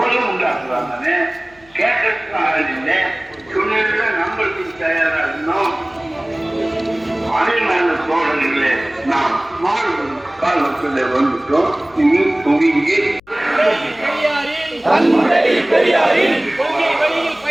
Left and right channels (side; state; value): left; noise; hum, 29 dB below the sound